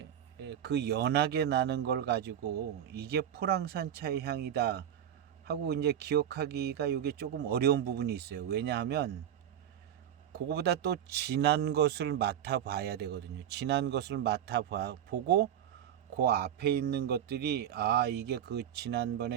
그 연하게 나는 걸 가지고 이게 포랑산 차의 향이다 하고 이제 기억하기가 이게 조금 어려운 부분이 있어요. 왜냐하면 그거보다 또 진한 것을 맡아봐야 되거든요. 진한 것을 맡아보고 그 앞에 있는 것들이 이게 그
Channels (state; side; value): quieter; left; 10.1 dB